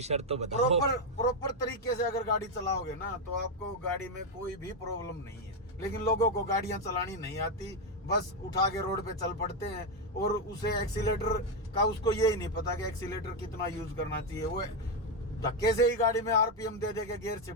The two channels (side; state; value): both; normal; correlation 0.05